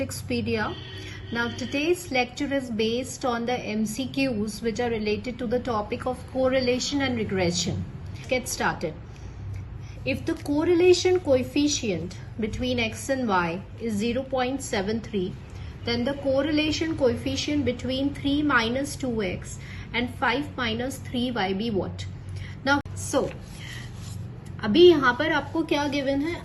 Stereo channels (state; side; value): identical; both; correlation 1.00